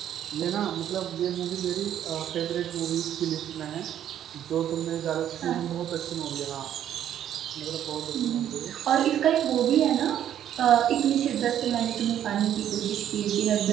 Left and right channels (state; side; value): quieter; left; 10.6 dB